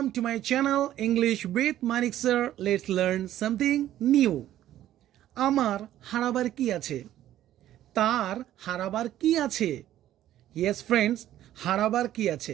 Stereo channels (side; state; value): left; quieter; 12.7 dB